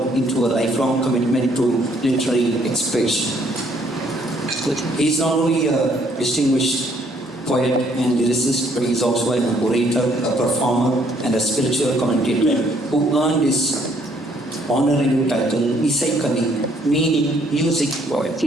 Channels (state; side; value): normal; both; correlation 0.65